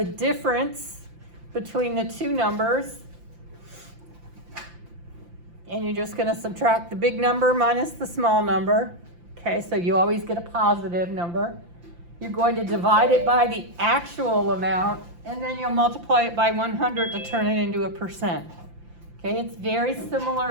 difference between the two numbers. And you're just going to subtract the big number minus the small number. Okay, so you always get a positive number. You're going to divide it by the actual amount, and then you'll multiply it by 100 to turn it into a percent. Okay, it's very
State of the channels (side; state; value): left; late; 5.8 ms